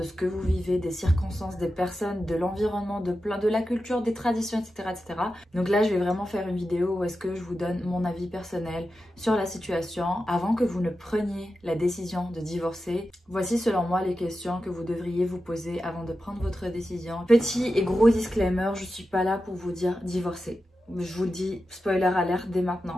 ce que vous vivez, des circonstances, des personnes, de l'environnement, de la culture, des traditions, etc., etc. Donc là, je vais vraiment faire une vidéo où est-ce que je vous donne mon avis personnel sur la situation avant que vous ne preniez la décision de divorcer. Voici selon moi les questions que vous devriez vous poser avant de prendre votre décision. Petit et gros disclaimer, je suis pas là pour vous dire divorcer. Je vous le dis, spoiler alert dès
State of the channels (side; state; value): both; normal; correlation 0.91